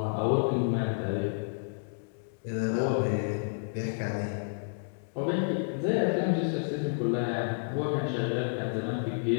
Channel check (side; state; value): right; silent; digital silence